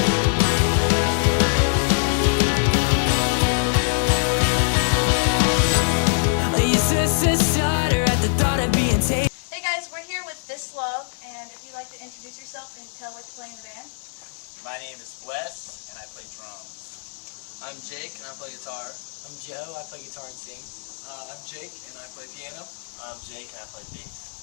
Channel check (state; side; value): silent; right; 58 dB below the other